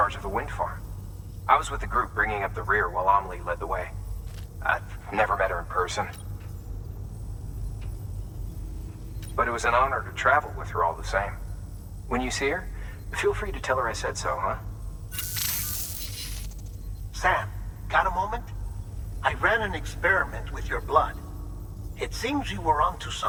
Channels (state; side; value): identical; both; correlation 1.00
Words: of the wind farm. I was with the group bringing up the rear while Amelie led the way. I've never met her in person. But it was an honor to travel with her all the same. When you see her, feel free to tell her I said so, huh? Sam, got a moment? I ran an experiment with your blood. It seems you were onto